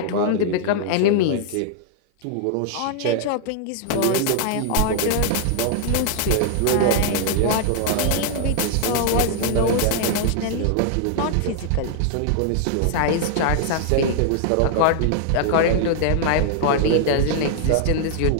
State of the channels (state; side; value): different; both; correlation 0.00